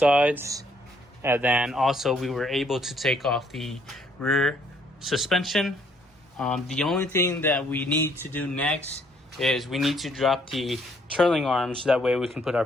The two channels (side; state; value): both; normal; correlation 0.66